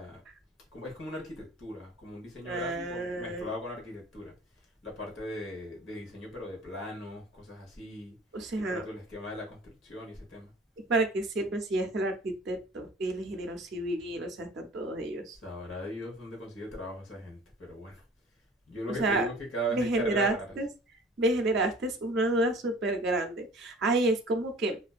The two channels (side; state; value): both; normal; correlation 0.47